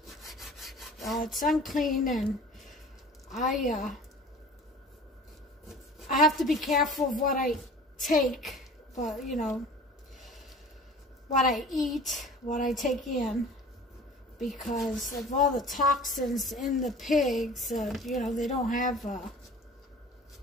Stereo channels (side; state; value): both; normal; correlation 0.43